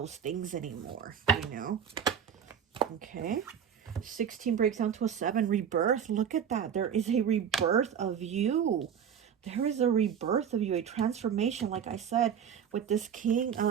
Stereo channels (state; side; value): quieter; left; 8.1 dB